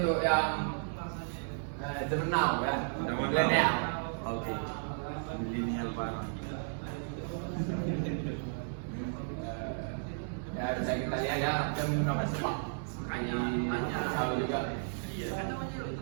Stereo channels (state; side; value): silent; left; digital silence